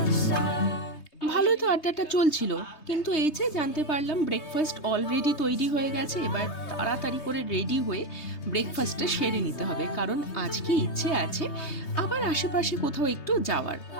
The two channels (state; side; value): late; right; 3.2 ms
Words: ভালোই তো আড্ডাটা চলছিল, কিন্তু এই যে জানতে পারলাম ব্রেকফাস্ট অলরেডি তৈরি হয়ে গেছে। এবার তাড়াতাড়ি করে রেডি হয়ে ব্রেকফাস্টটা সেরে নিতে হবে, কারণ আজকে ইচ্ছে আছে আবার আশেপাশে কোথাও একটু যাওয়ার।